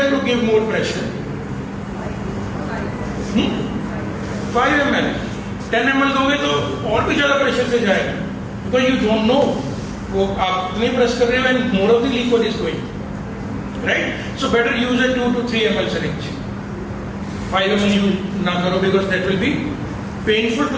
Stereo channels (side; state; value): both; identical; correlation 1.00